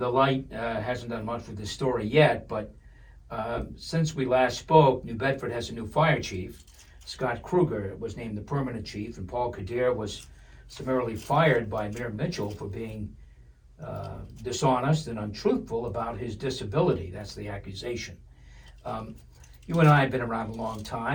Light hasn't done much with this story yet, but since we last spoke, New Bedford has a new fire chief. Scott Kruger was named the permanent chief, and Paul Kadir was summarily fired by Mayor Mitchell for being dishonest and untruthful about his disability. That's the accusation. You and I have been around a long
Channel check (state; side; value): identical; both; correlation 1.00